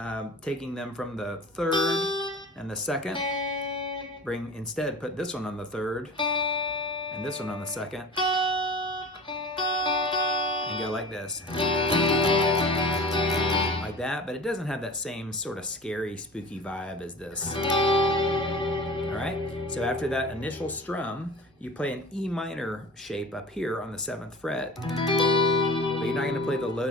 taking them from the third and the second. Instead, put this one on the third and this one on the second, and go like this. Like that, but it doesn't have that same sort of scary, spooky vibe as this. All right, so after that initial strum, you play an E minor shape up here on the 7th fret, but you're not gonna play the low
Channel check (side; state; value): both; normal; correlation 0.39